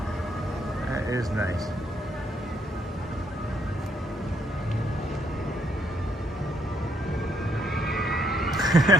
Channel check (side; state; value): both; normal; correlation 0.73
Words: That is nice.